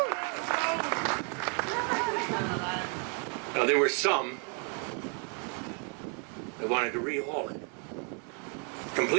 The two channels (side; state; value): left; quieter; 39.2 dB